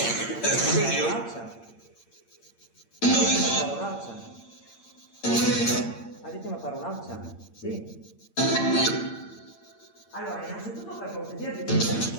Ha detto una parolaccia? Sì. Allora, innanzitutto per cortesia di tutto il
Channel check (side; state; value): right; late; 8.8 ms